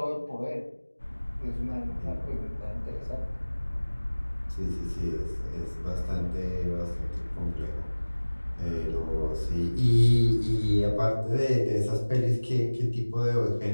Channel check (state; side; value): inverted; both; correlation -1.00